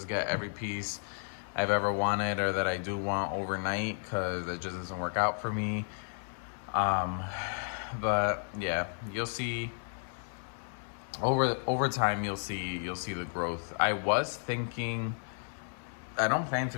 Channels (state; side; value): silent; right; digital silence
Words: get every piece I've ever wanted or that I do want overnight, because it just doesn't work out for me. But yeah, you'll see over time, you'll see the growth. I was thinking, I don't plan